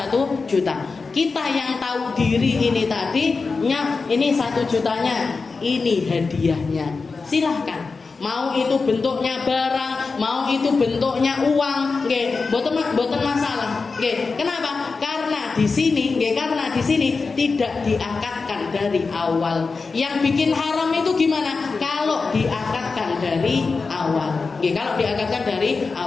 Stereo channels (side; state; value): right; quieter; 4.4 dB